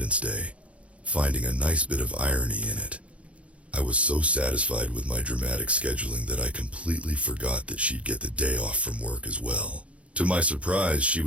Day, finding a nice bit of irony in it. I was so satisfied with my dramatic scheduling that I completely forgot that she'd get the day off from work as well. To my surprise, she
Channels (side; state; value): left; late; 0.063 ms